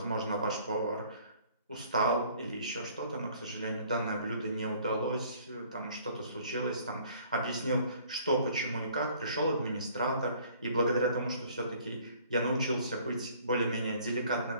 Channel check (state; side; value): inverted; both; correlation -0.56